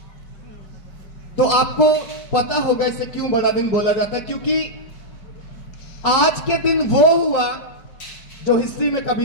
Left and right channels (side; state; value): right; late; 5.2 ms